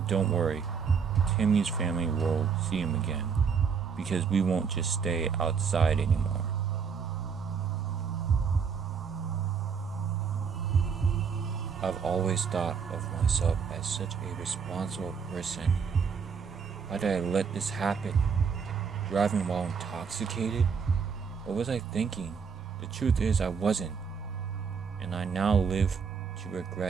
don't worry, Timmy's family will see him again, because we won't just stay outside anymore. I've always thought of myself as such a responsible person. Why did I let this happen? Driving while intoxicated? What was I thinking? The truth is I wasn't, and I now live to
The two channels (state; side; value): quieter; left; 6.2 dB